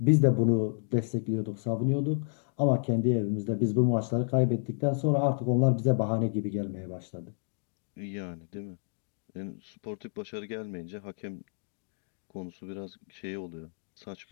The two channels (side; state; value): right; silent; digital silence